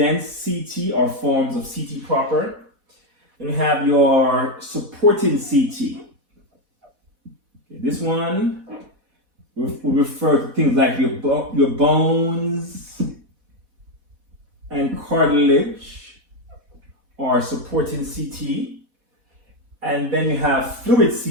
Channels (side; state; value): left; late; 4.1 ms